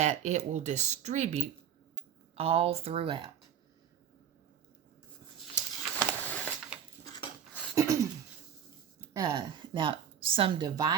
it will distribute all throughout. Now, some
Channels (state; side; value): quieter; left; 8.6 dB